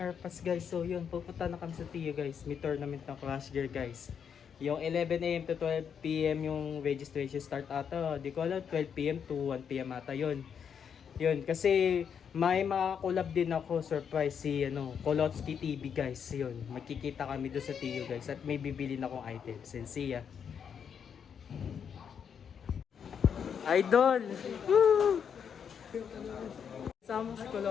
AirPods guys. So, yun. Pupunta na kami sa TU guys. May tournament ng Crash Gear guys. Yung 11 AM to 12 PM yung registration start ata. Di ko alam, 12 PM to 1 PM ata yun. Yun. Kasi may makakulab din ako. Surprise si Kolotsky TV guys. Yun. Magkikita kami doon sa TU guys. At may bibili na akong items. And see ya. Idol! Woo! Sama si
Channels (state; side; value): quieter; right; 7.4 dB